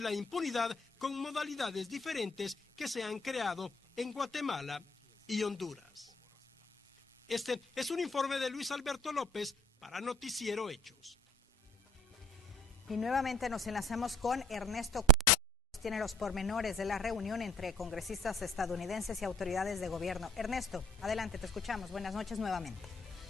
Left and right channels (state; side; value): normal; both; correlation 0.56